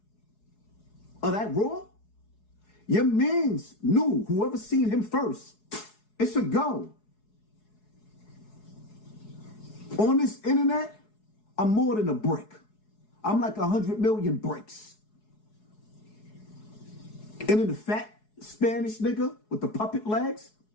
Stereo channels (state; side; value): late; right; 4.7 ms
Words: of that raw, your mans knew, whoever seen him first, it's a go. On this internet, I'm more than a brick. I'm like 100 million bricks. And then the fat Spanish nigga with the puppet legs,